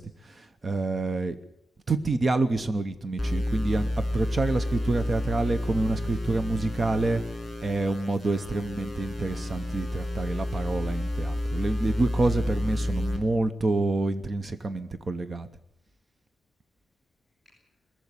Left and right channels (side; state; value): both; normal; correlation 0.92